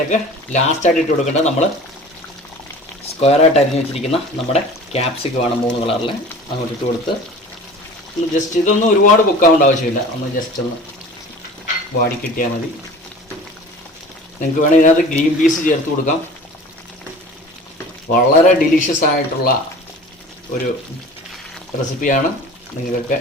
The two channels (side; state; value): both; normal; correlation 0.41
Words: ലാസ്റ്റായിട്ട് ഇട്ട് കൊടുക്കേണ്ടത് നമ്മൾ സ്ക്വയറായിട്ട് അരിഞ്ഞ് വെച്ചിരിക്കുന്ന നമ്മുടെ ക്യാപ്സിക്കമാണ് 3 കളറിൽ. അങ്ങോട്ട് ഇട്ട് കൊടുത്ത് ഒന്ന് ജസ്റ്റ്, ഇതൊന്നും ഒരുപാട് കുക്കാവേണ്ട ആവശ്യമില്ല, ഒന്ന് ജസ്റ്റ് ഒന്ന് വാടി കിട്ടിയാൽ മതി. നിങ്ങൾക്ക് വേണമെങ്കിൽ ഇതിനകത്ത് ഗ്രീൻ പീസ് ചേർത്ത് കൊടുക്കാം. വളരെ ഡിലീഷ്യസ് ആയിട്ടുള്ള ഒരു റെസിപ്പിയാണ്. നിങ്ങൾക്കൊക്കെ